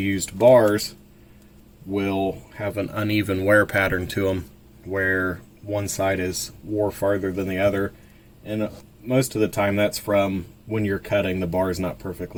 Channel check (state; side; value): identical; both; correlation 1.00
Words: bars will have an uneven wear pattern to them, where one side is wore farther than the other, and most of the time that's from when you're cutting, the bar is not